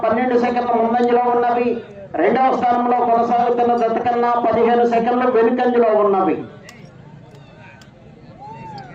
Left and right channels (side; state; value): both; identical; correlation 1.00